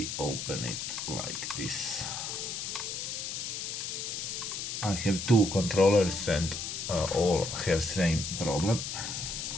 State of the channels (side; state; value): left; noise; hiss, 4 dB below the sound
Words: open it like this. I have two controllers and all have same problem.